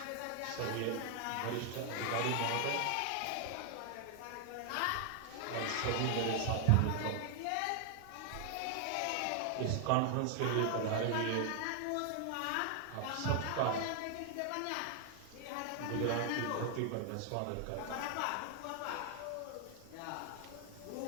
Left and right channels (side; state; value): both; different; correlation 0.00